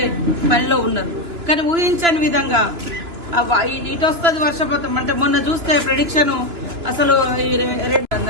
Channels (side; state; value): left; late; 2.9 ms